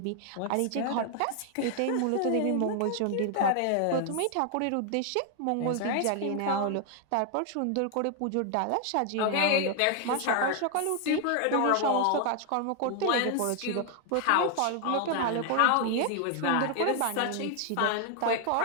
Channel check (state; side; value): different; both; correlation 0.00